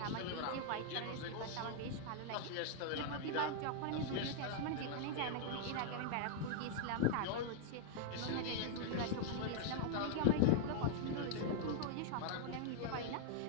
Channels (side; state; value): both; different; correlation -0.01